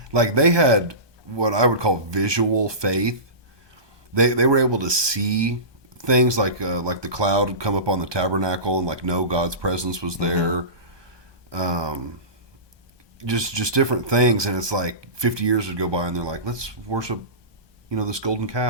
Like they had what I would call visual faith. They were able to see things like the cloud would come up on the tabernacle and like know God's presence was there. Just different things, and it's like 50 years would go by and they're like, let's worship, this golden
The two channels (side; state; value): left; late; 1.2 ms